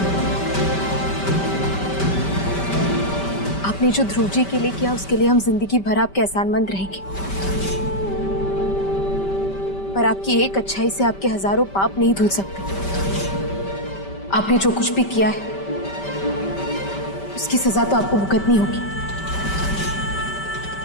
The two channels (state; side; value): late; right; 5.2 ms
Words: आपने जो ध्रुव जी के लिए किया उसके लिए हम जिंदगी भर आपके एहसानमंद रहेंगे, पर आपकी एक अच्छाई से आपके हजारों पाप नहीं धुल सकते। आपने जो कुछ भी किया है उसकी सजा तो आपको भुगतनी होगी,